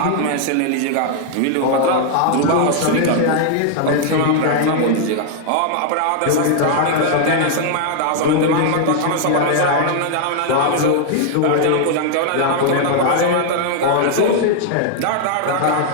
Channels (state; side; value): different; both; correlation 0.00